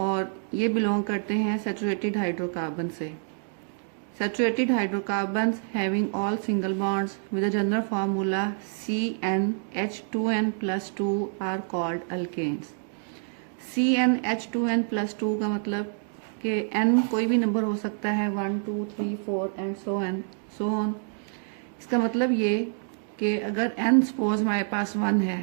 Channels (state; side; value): silent; left; 60 dB below the other